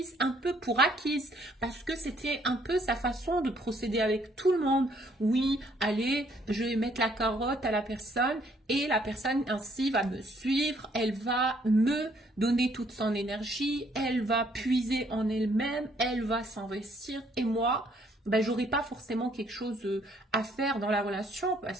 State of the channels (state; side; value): normal; both; correlation 0.66